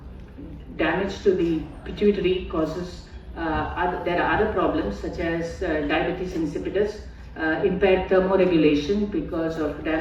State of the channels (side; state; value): both; identical; correlation 1.00